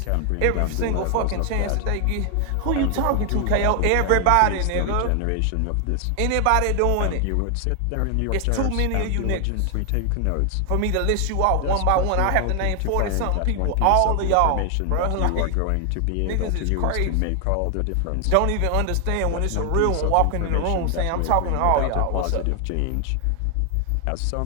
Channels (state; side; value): different; both; correlation 0.00